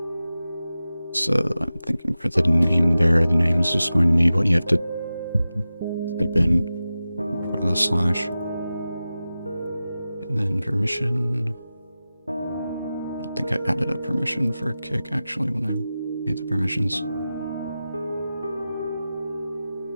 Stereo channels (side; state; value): both; inverted; correlation -0.94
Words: So I'm thinking for the name there, the name is just going to be what you have to type in front of the slash. And then permission. I don't think I added a permission for kick actually when I made the permissions.